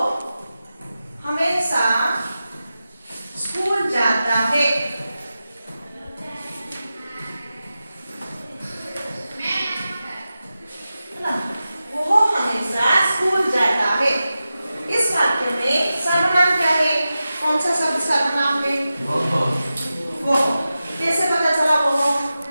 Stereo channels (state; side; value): inverted; both; correlation -0.93